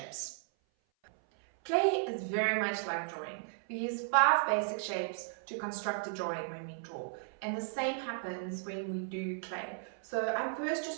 Clay is very much like drawing. We use 5 basic shapes to construct a drawing when we draw, and the same happens when we do clay. So I'm first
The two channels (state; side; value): silent; left; 54 dB below the other